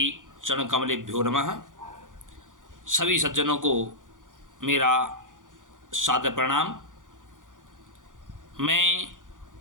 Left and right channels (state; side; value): late; left; 0.88 ms